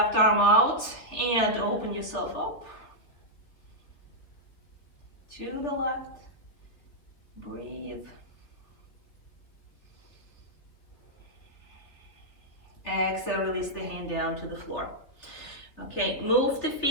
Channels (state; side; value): late; right; 3.3 ms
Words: arm out and open yourself up. To the left. Breathe. Exhale, release the hand down to the floor. Okay, move the